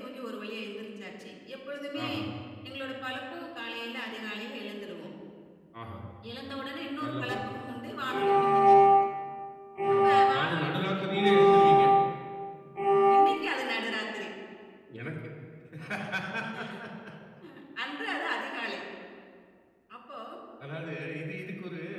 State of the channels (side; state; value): both; identical; correlation 1.00